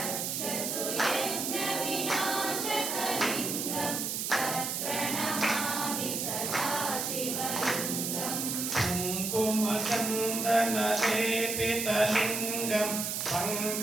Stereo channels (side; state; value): right; noise; hiss, 2 dB below the sound